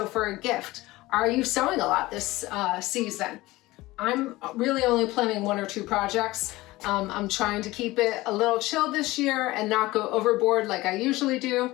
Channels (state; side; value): quieter; right; 19.1 dB